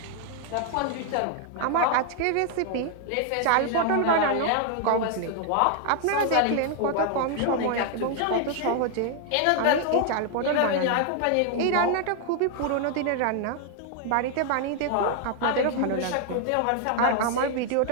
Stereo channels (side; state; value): both; different; correlation 0.00